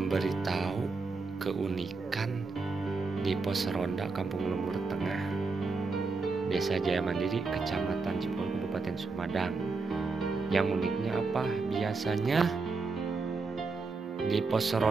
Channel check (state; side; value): quieter; left; 4.1 dB